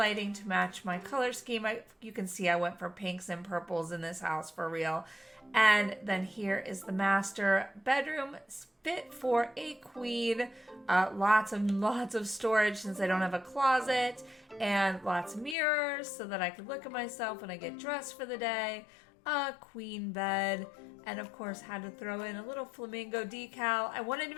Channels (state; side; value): drops out; right; at 15.6 s